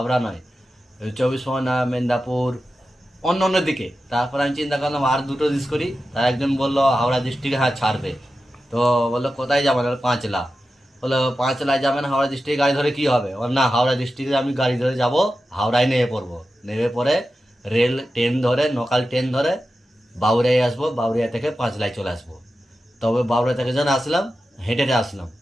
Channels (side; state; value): both; normal; correlation 0.92